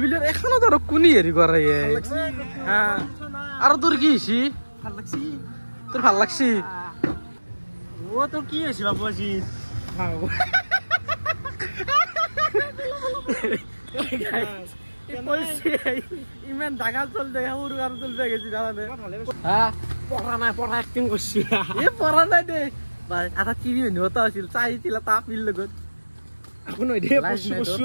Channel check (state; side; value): inverted; both; correlation -1.00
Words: বুলি এখনত আৰু কোনি হেৰি কৰে আৰু তোৰ কি হৈছে ভাল লাগছি তোৰ ভাল লাগছি ও তোৰ কি হৈছে বাবু আজি ইমান ডাঙৰ চল দে সৰু আৰু চল দে গেছি জানানে পঢ়া নাই পঢ়া এক্টিং কৰছি পঢ়া নাই দে আধা টিভি নিবতা আছিল চাইছিল এটা আপিৰ লগত আকৌ নহয় দে কচু